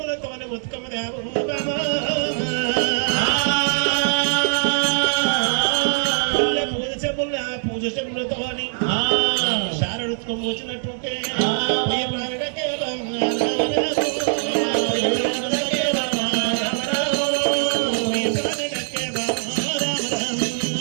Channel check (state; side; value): silent; left; 64 dB below the other